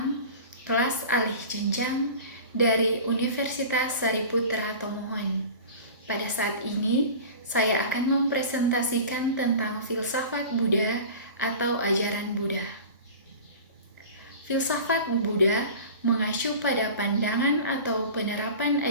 kelas alih jenjang dari Universitas Sariputra Tomohon. Pada saat ini, saya akan mempresentasikan tentang filsafat Buddha atau ajaran Buddha. Filsafat Buddha mengacu pada pandangan atau penerapan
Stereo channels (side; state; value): both; inverted; correlation -0.37